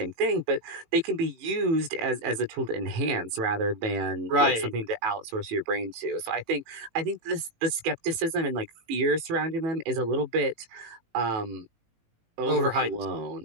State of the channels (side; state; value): left; late; 18 ms